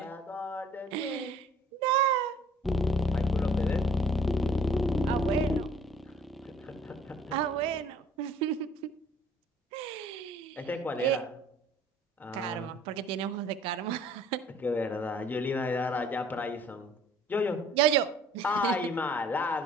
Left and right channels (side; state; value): both; normal; correlation 0.54